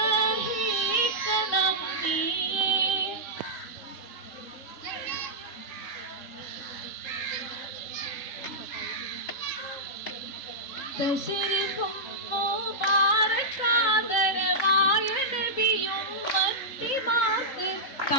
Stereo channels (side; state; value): right; late; 3.8 ms